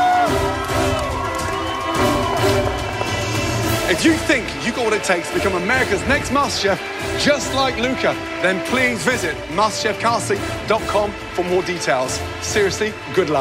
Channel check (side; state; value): both; identical; correlation 1.00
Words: If you think you got what it takes to become America's next MasterChef, just like Luca, then please visit MasterChefCasting.com for more details. Seriously, good